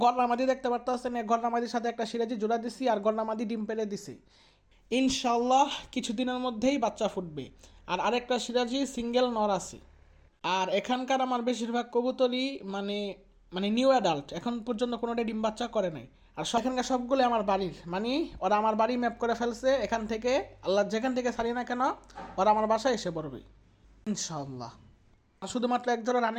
গরনা মাদি দেখতে পারতেছেন, এই গরনা মাদির সাথে একটা সিরাজি জোড়া দিছি, আর গরনা মাদি ডিম পেড়ে দিছি। ইনশাল্লাহ কিছুদিনের মধ্যেই বাচ্চা ফুটবে। আর আরেকটা সিরাজি সিঙ্গেল নর আছে। আর এখানকার আমার বেশিরভাগ কবুতরই মানে মানে নিউ অ্যাডাল্ট, এখন পর্যন্ত কোনোটাই ডিম বাচ্চা করে নাই। আর এখানকার সবগুলো আমার বাড়ির, মানে ওরা আমার বাড়ি ম্যাপ করে ফেলছে। এখান থেকে আল্লাহ যেখান থেকে ছাড়ি না কেন ওরা আমার বাসায় এসে পড়বে ইনশাআল্লাহ। আর শুধুমাত্র এক জোড়া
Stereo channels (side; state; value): both; identical; correlation 1.00